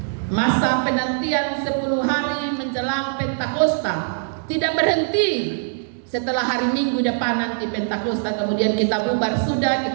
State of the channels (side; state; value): left; silent; digital silence